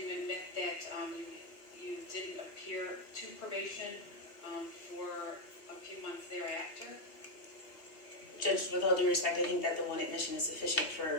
admit that you didn't appear to probation for a few months thereafter? Judge, with all due respect, I think that the one admission is sufficient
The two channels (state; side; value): late; right; 2.5 ms